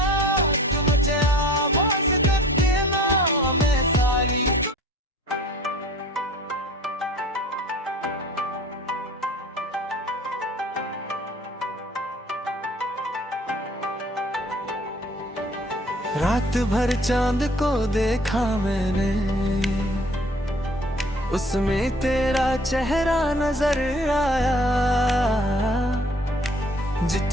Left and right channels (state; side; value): normal; both; correlation 0.51